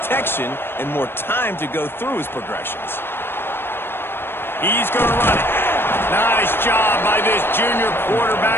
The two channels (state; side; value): late; right; 0.11 ms